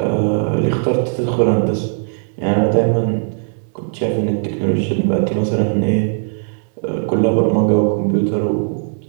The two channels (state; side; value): silent; left; 60 dB below the other